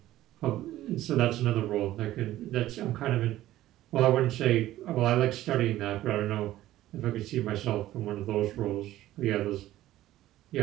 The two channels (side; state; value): left; quieter; 14.6 dB